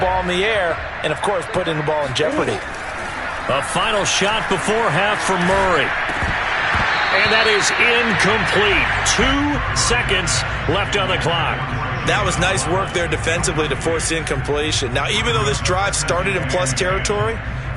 in the air and, of course, putting the ball in jeopardy. A final shot before half for Murray. And that is incomplete. 2 seconds left on the clock. That was nice work there defensively to force the incompletion. Now, even though this drive started in plus territory,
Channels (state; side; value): identical; both; correlation 1.00